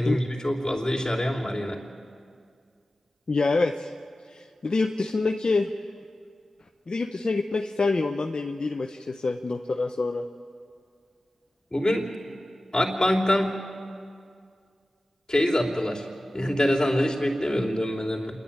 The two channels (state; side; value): normal; both; correlation 0.95